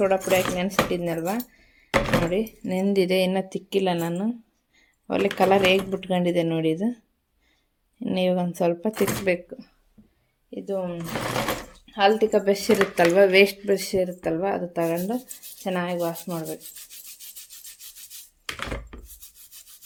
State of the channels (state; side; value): identical; both; correlation 1.00